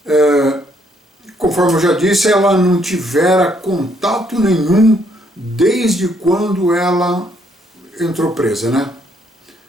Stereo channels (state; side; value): normal; both; correlation 0.70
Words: Conforme eu já disse, ela não tivera contato nenhum desde quando ela entrou presa, né?